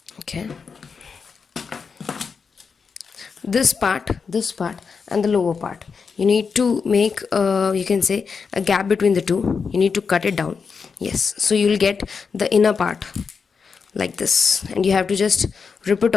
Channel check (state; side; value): quieter; right; 5.6 dB